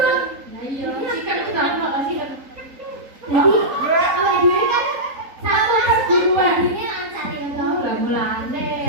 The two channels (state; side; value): late; left; 3.8 ms